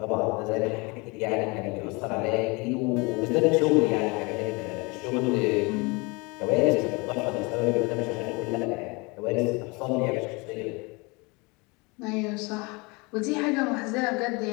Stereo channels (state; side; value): quieter; right; 27.3 dB